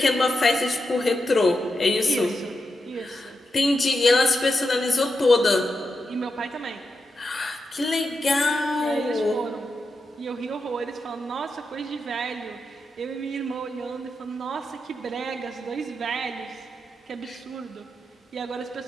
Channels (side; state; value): both; normal; correlation 0.87